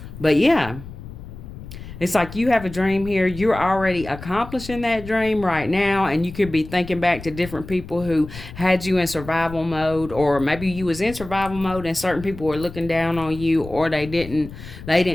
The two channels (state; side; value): noise; left; rumble, 13 dB below the sound